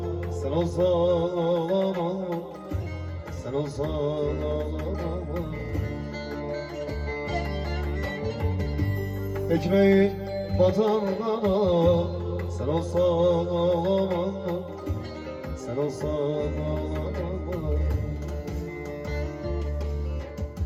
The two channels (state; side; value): identical; both; correlation 1.00